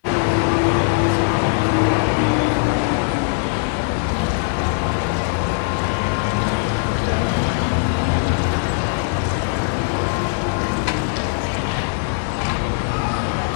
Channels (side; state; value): right; silent; 66 dB below the other